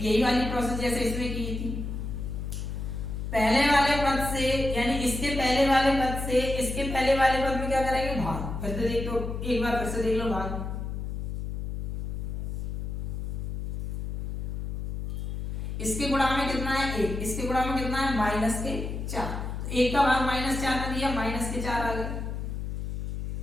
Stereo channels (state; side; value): noise; left; hum, 4 dB below the sound